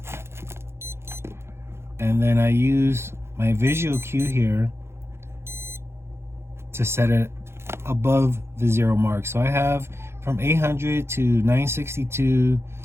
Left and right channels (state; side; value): late; left; 0.12 ms